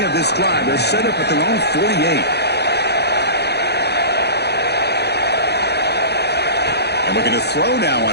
this drive. They're set up at their own 48. And looking to throw now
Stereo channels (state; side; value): late; right; 0.48 ms